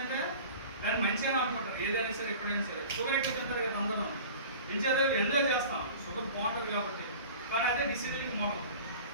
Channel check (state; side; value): inverted; both; correlation -0.41